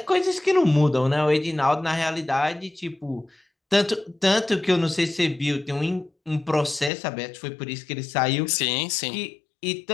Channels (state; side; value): drops out; right; at 6.9 s